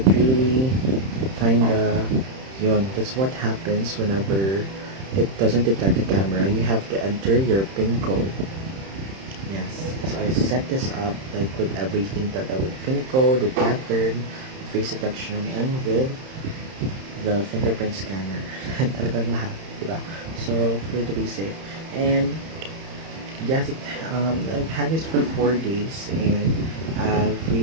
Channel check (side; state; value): left; late; 31 ms